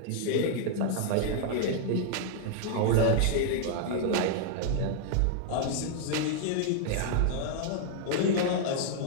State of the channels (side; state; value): both; different; correlation -0.01